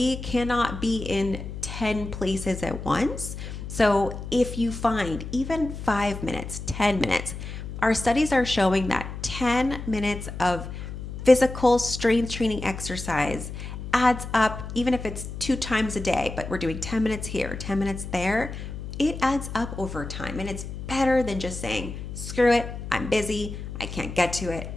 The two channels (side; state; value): left; noise; hum, 8 dB below the sound